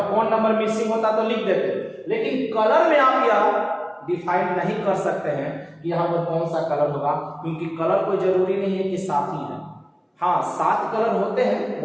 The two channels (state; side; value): identical; both; correlation 1.00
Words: कौन नंबर मिसिंग होता तो लिख देते, लेकिन कलर में आप यह डिफाइन नहीं कर सकते हैं कि यहाँ पर कौन सा कलर होगा, क्योंकि कलर कोई जरूरी नहीं है कि 7 ही है। हाँ 7 कलर होते हैं,